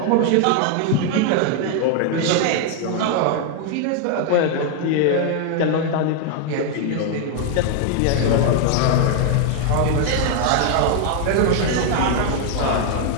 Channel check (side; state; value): both; different; correlation 0.00